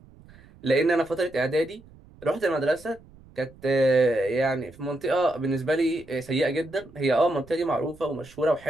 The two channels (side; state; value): right; noise; rumble, 24 dB below the sound